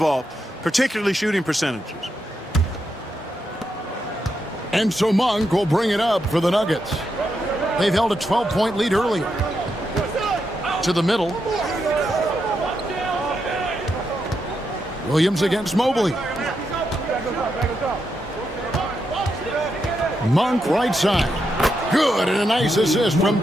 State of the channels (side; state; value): both; normal; correlation 0.83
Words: particularly shooting percentages. And so Monk will bring it up for the Nuggets. They've held a 12-point lead earlier. To the middle. Williams against Mobley. Monk right side. Good, and a nice assist from